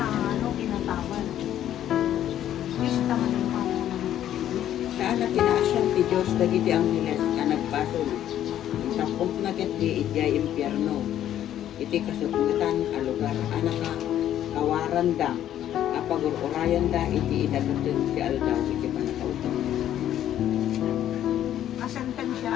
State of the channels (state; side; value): quieter; right; 11.4 dB